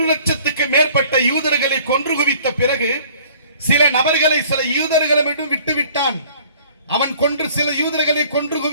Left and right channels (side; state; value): both; inverted; correlation -0.53